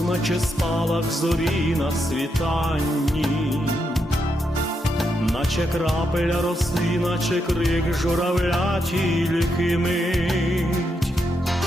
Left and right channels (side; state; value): both; normal; correlation 0.82